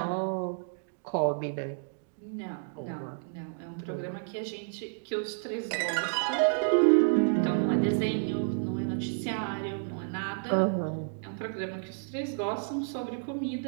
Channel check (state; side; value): silent; left; digital silence